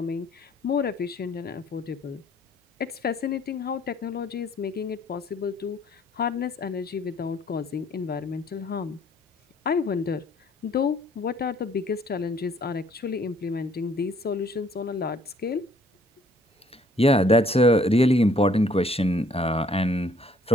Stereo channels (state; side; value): normal; both; correlation 0.61